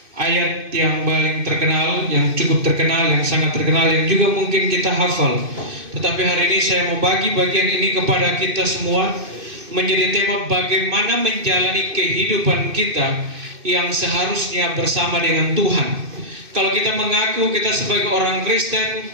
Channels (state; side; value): late; left; 2.6 ms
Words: ayat yang paling terkenal, yang cukup terkenal, yang sangat terkenal, yang juga mungkin kita hafal. Tetapi hari ini saya mau bagi bagian ini kepada kita semua menjadi tema bagaimana menjalani kehidupan kita yang seharusnya bersama dengan Tuhan. Kalau kita mengaku kita sebagai orang Kristen,